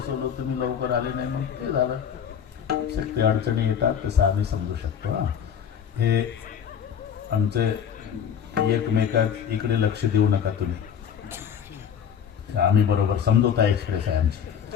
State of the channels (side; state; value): right; quieter; 8.2 dB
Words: तुम्ही लवकर आले नाही म्हणून ते झालं. शक्ती अडचणी येतात तसं आम्ही समजू शकतो. हे आमचे एकमेकात इकडे लक्ष देऊ नका तुम्ही, आम्ही बरोबर समजोता एक्सप्रेस आहे आमची.